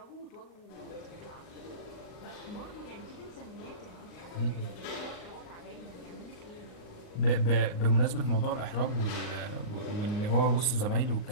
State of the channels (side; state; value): right; late; 38 ms